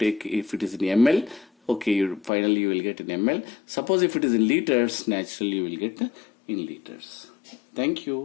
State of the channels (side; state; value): right; drops out; at 2.3 s